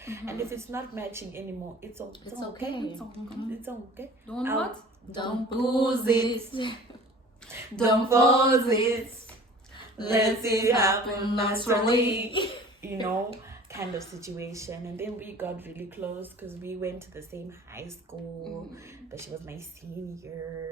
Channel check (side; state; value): both; normal; correlation 0.45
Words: And if it's not matching anymore, it's okay. It's okay. Don't lose it. Don't pause it. Let it happen naturally. Kind of situation. And then we got really close because we went to the same high school, but she was my